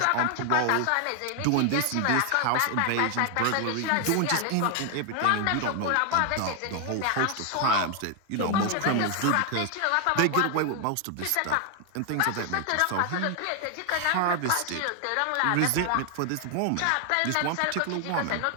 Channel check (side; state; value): both; different; correlation 0.00